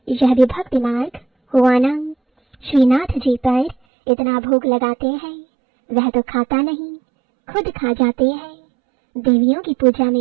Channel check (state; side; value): drops out; left; at 3.8 s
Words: यह भी भक्ति मार्ग हुआ ना। श्रीनाथ जी पर इतना भोग लगाते हैं, वह तो खाता नहीं, खुद खा जाते हैं। देवियों की पूजा